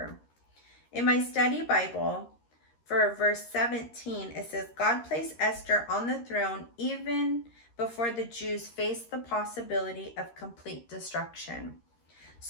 In my study Bible, for verse 17, it says, God placed Esther on the throne even before the Jews faced the possibility of complete destruction,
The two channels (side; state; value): right; late; 13 ms